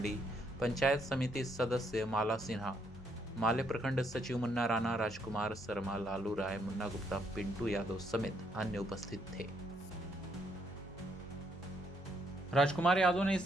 पंचायत समिति सदस्य माला सिन्हा, माले प्रखंड सचिव मुन्ना राणा, राजकुमार शर्मा, लालू राय, मुन्ना गुप्ता, पिंटू यादव समेत अन्य उपस्थित थे। राजकुमार यादव ने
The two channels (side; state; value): both; normal; correlation 0.73